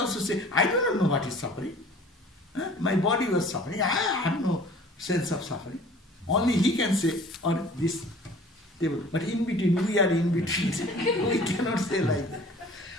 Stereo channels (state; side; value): normal; both; correlation 0.48